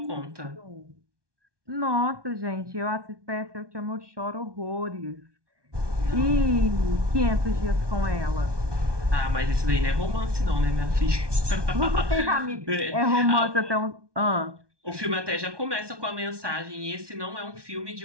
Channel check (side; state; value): left; late; 1.2 ms